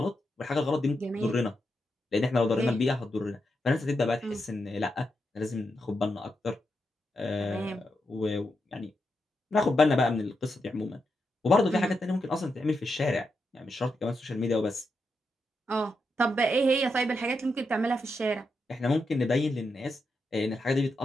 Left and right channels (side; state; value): both; normal; correlation 0.85